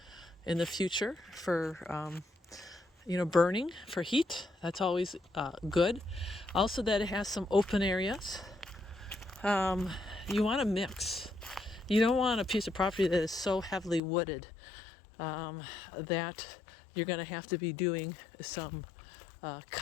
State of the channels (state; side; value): drops out; right; at 14.0 s